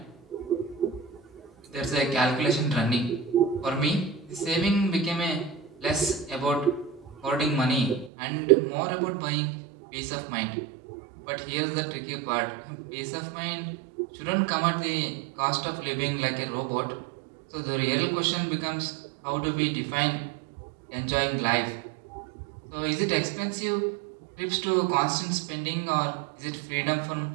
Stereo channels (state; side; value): drops out; left; at 8.1 s